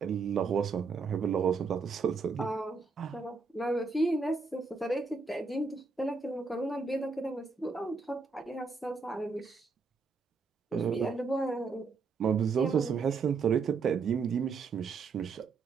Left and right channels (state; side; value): quieter; left; 4.7 dB